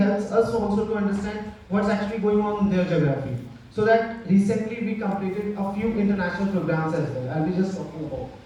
us also to understand what's actually going on in their geography. So that recently we completed a few international programs as well. I'll be just talking about.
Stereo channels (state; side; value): identical; both; correlation 1.00